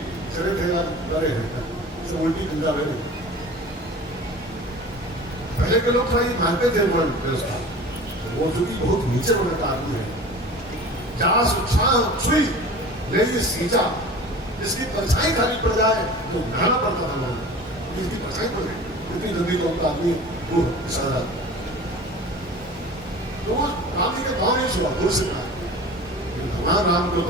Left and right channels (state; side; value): normal; both; correlation 0.39